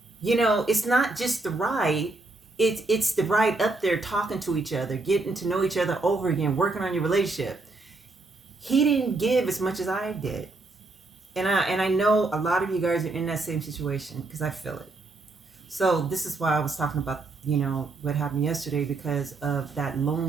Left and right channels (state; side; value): quieter; left; 3.3 dB